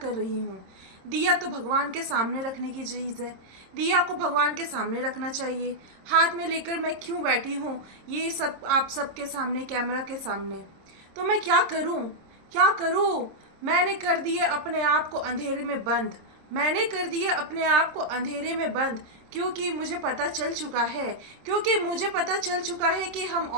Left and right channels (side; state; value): left; late; 26 ms